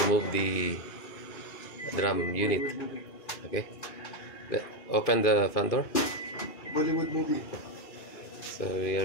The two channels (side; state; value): right; late; 2.5 ms